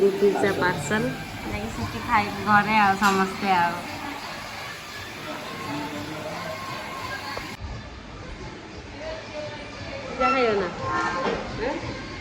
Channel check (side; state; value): both; identical; correlation 1.00